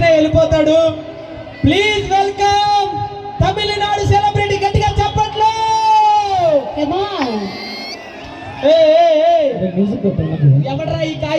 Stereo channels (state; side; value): identical; both; correlation 1.00